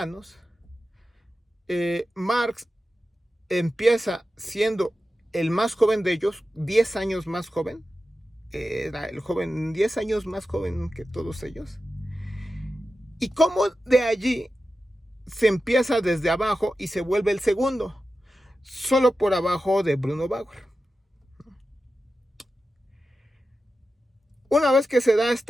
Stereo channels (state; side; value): normal; both; correlation 0.92